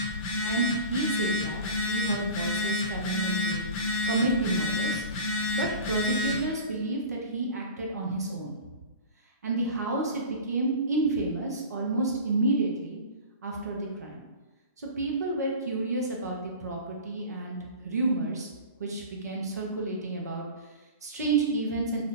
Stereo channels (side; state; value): both; inverted; correlation -0.35